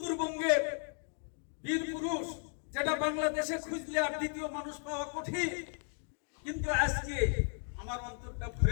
বীর পুরুষ, যেটা বাংলাদেশে খুঁজলে আর দ্বিতীয় মানুষ পাওয়া কঠিন, কিন্তু আজকে আমার অন্তরটা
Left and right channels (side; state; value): right; silent; 54 dB below the other